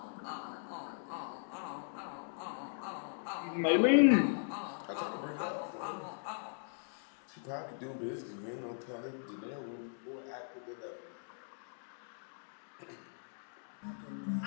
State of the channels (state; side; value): silent; right; digital silence